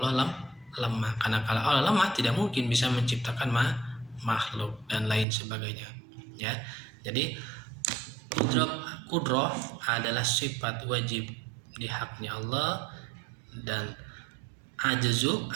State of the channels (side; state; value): left; drops out; at 5.2 s